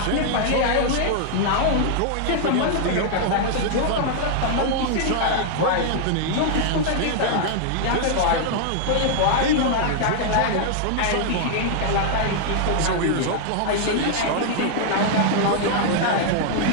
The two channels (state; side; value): different; both; correlation -0.01